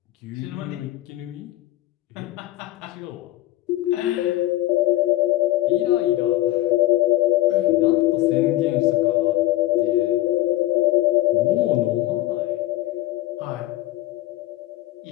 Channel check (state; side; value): quieter; right; 15.9 dB